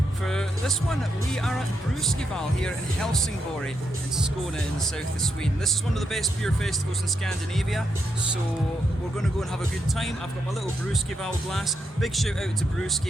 For this one, we are at Brewskival here in Helsingborg in Skåne in the south of Sweden. This is one of the best beer festivals in Scandinavia, so we're going to go and have a good time. I've got my little Brewskival glass. Big shout out to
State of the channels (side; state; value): both; normal; correlation 0.81